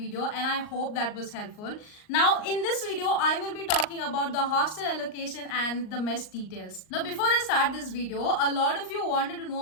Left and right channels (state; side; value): late; right; 38 ms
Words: and I hope that was helpful. Now in this video, I will be talking about the hostel allocation and the mess details. Now before I start this video, a lot of you wanted to